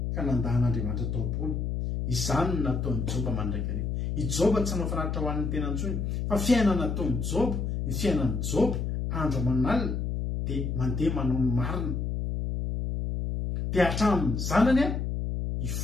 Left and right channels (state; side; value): noise; left; hum, 2 dB below the sound